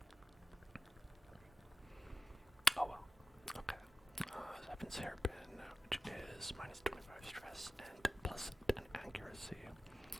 Oh well. Okay. Heaven's Hairpin, which is minus 25 stress and plus 10 accuracy.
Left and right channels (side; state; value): both; normal; correlation 0.95